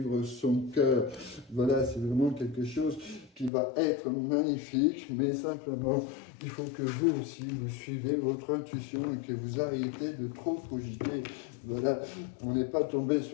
son cœur. Voilà, c'est vraiment quelque chose qui va être magnifique, mais simplement, il faut que vous aussi, vous suivez votre intuition et que vous arrêtez de trop cogiter. Voilà, on n'est pas tombé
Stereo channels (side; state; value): right; drops out; at 3.5 s